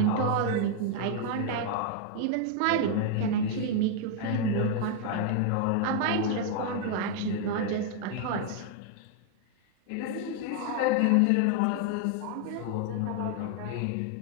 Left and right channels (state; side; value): different; both; correlation 0.00